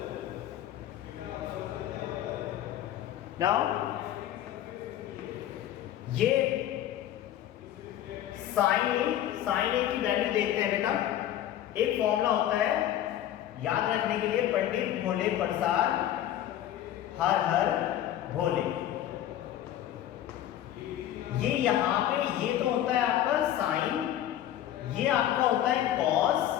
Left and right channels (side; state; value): right; quieter; 11.9 dB